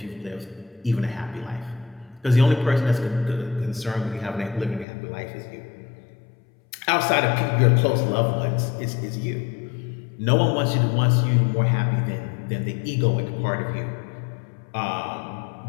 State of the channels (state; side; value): drops out; right; at 4.9 s